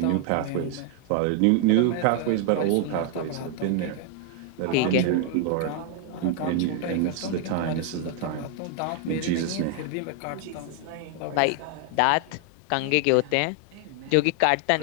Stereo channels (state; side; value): different; both; correlation 0.00